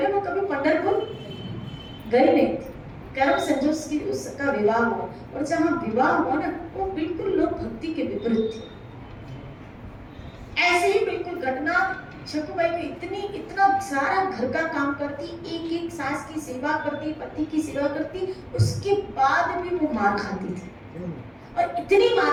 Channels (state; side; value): identical; both; correlation 1.00